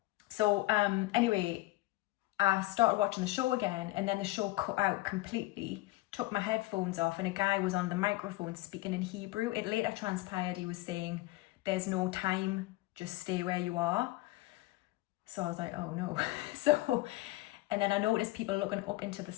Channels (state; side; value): quieter; right; 19.3 dB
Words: So anyway, I started watching the show again, and then the show cut out completely, took my headphones off, and a guy was on the microphone speaking in Hebrew. It later transpired he was saying, there's no time, just stay where you are. So I was like, oh no. And then I noticed people looking up into the